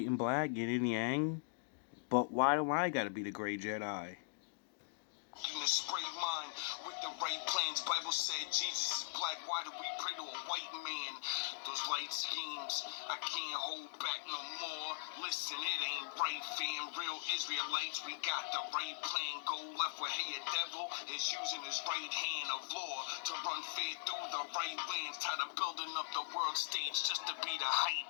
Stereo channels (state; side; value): silent; right; digital silence